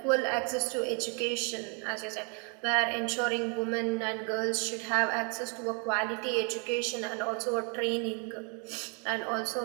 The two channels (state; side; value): quieter; left; 36.4 dB